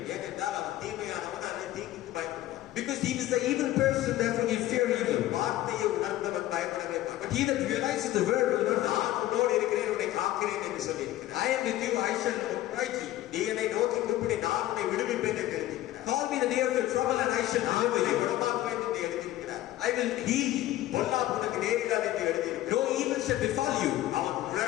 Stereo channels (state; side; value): quieter; right; 14.7 dB